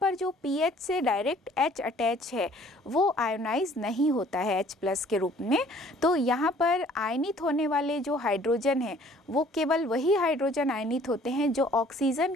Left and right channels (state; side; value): normal; both; correlation 0.56